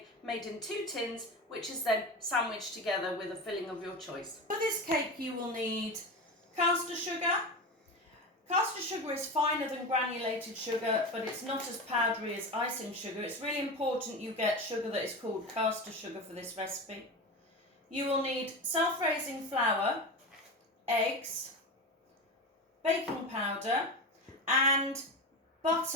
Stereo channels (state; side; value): normal; both; correlation 0.24